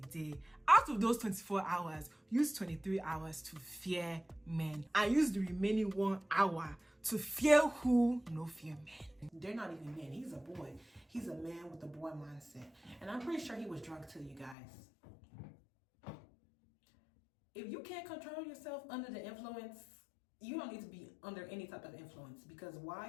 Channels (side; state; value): right; drops out; at 14.6 s